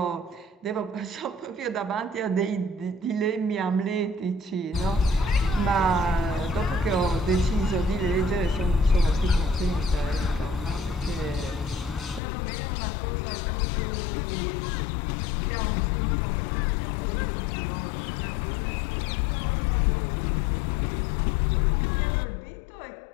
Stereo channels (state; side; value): drops out; right; at 12.2 s